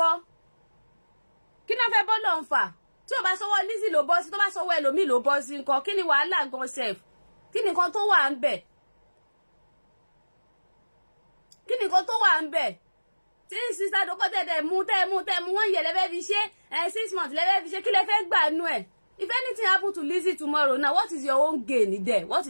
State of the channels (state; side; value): inverted; both; correlation -1.00